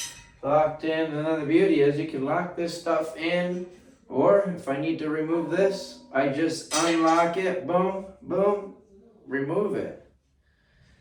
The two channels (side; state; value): both; identical; correlation 1.00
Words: locked in. And then the beauty is you can lock this stuff in, or if I need to remove this, I just unlock it, boom, boom, remove it.